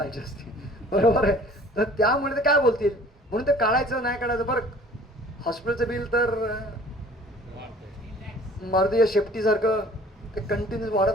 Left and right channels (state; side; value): normal; both; correlation 0.50